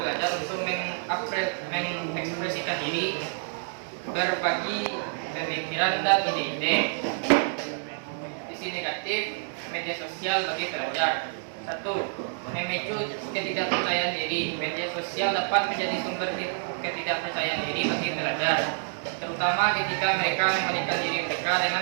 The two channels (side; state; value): left; silent; digital silence